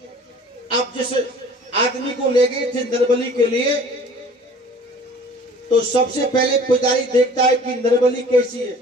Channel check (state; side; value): normal; both; correlation 0.49